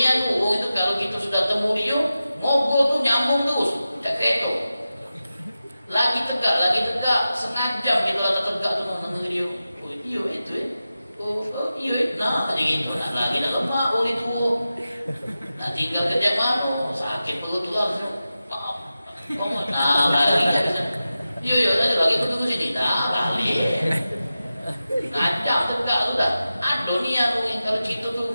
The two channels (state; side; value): inverted; both; correlation -0.93